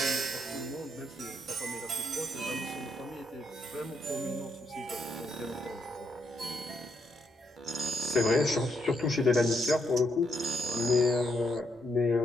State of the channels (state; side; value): normal; both; correlation 0.76